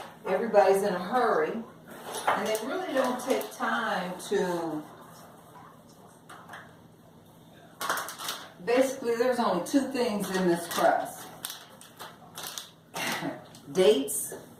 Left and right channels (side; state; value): both; identical; correlation 1.00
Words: Everybody's in a hurry, and they really don't take time to... Basically, there's only 2 things in this crust. Dates,